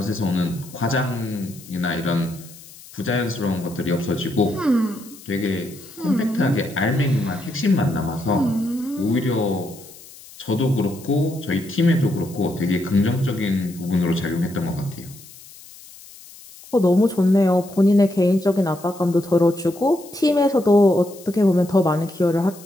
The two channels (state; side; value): noise; left; hiss, 20 dB below the sound